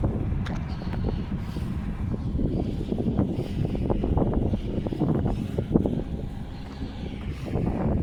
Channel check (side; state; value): both; identical; correlation 1.00